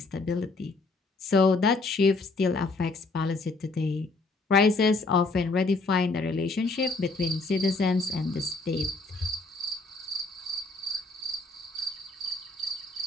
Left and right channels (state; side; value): quieter; right; 3.5 dB